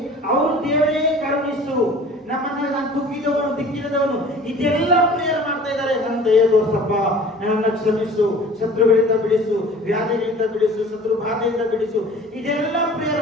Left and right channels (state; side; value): normal; both; correlation 0.45